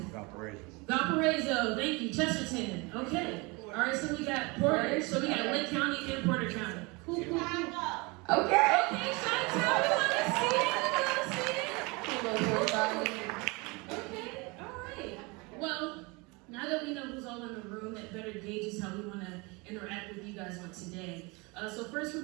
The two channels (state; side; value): quieter; left; 27.0 dB